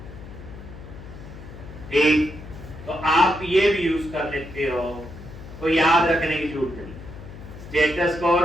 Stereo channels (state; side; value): noise; left; hum, 14 dB below the sound